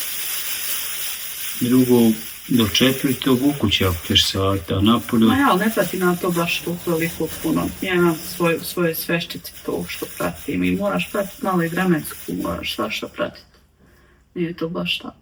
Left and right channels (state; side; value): identical; both; correlation 1.00